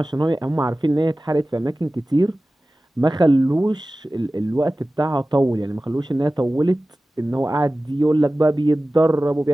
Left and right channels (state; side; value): normal; both; correlation 0.96